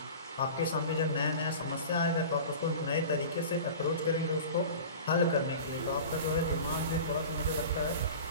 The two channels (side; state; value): both; inverted; correlation -0.36